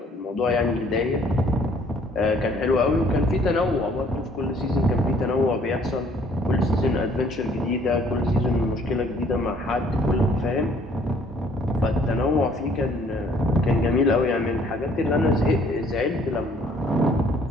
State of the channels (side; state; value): both; normal; correlation 0.60